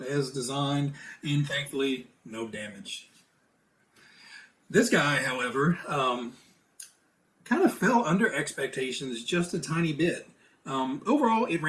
as designed, and thankfully, no damage. This guy, however, kind of fell under expectations just a tiny bit. Overall, it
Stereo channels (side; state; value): both; identical; correlation 1.00